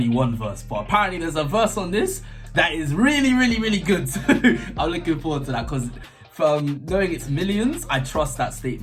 one verse, but apparently there's a verse on this that is really good. So I'm looking forward to that because from knowing it's M1LLIONZ, I trust that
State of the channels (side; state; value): both; identical; correlation 1.00